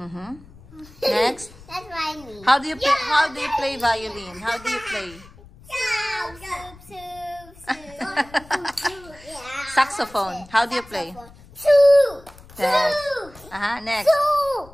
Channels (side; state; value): left; noise; rumble, 22 dB below the sound